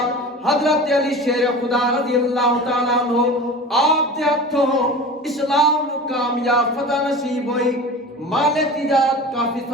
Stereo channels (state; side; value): normal; both; correlation 0.35